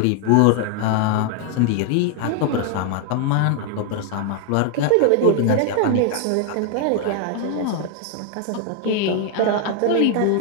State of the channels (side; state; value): both; different; correlation 0.00